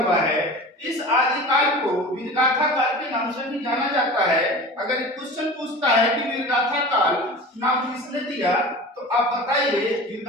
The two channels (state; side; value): normal; both; correlation 0.36